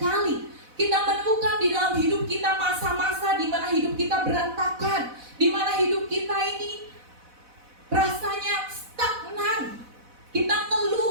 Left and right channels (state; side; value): late; left; 4.0 ms